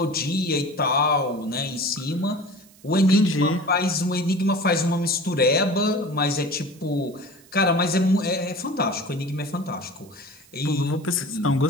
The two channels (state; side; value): noise; right; hiss, 26 dB below the sound